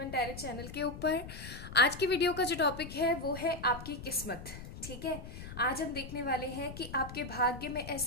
टैरो चैनल के ऊपर। आज की वीडियो का जो टॉपिक है वो है आपकी किस्मत। ठीक है, आज हम देखने वाले हैं कि आपके भाग्य में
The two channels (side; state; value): left; noise; rumble, 11 dB below the sound